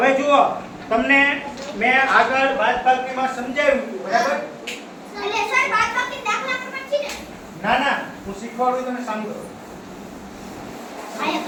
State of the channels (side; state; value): both; identical; correlation 1.00